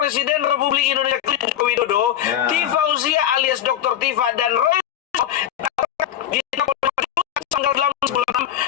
Republik Indonesia Joko Widodo, Ya. Tifauziah alias Dr. Tifa dan Roy tanggal 8 bulan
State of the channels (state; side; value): quieter; right; 10.9 dB